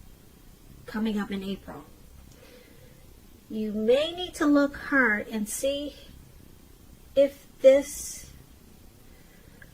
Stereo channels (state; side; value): identical; both; correlation 1.00